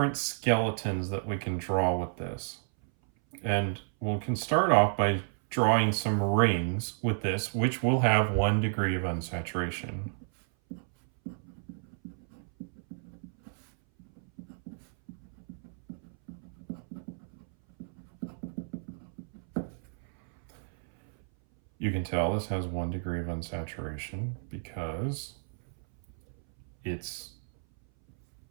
skeletons that we can draw with this. And we can start off by drawing some rings with this, which will have 1 degree of unsaturation. You can tell this has 1 degree of unsaturation because it's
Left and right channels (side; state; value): left; silent; 57 dB below the other